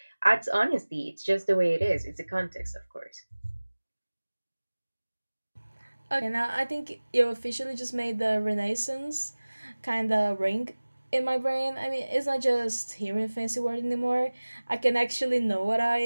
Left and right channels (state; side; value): inverted; both; correlation -1.00